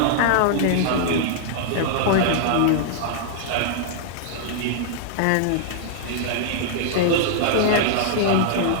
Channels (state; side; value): different; both; correlation -0.01